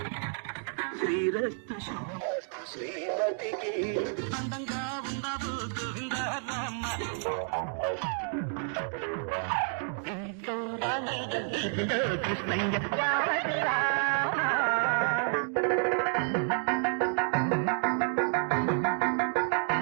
శ్రీరస్తు శ్రీమతికి అందంగా ఉండవు గోవిందరామ కృష్ణయ్య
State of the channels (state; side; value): silent; left; 58 dB below the other